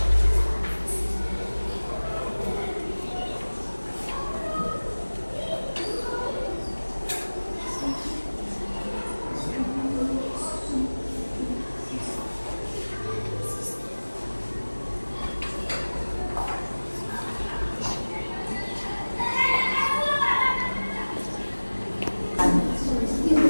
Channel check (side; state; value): both; inverted; correlation -1.00